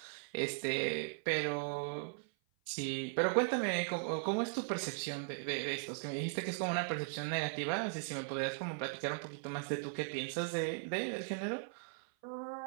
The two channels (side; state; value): left; silent; 52 dB below the other